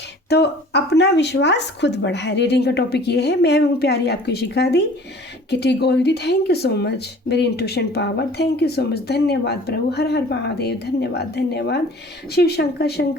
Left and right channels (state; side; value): normal; both; correlation 0.48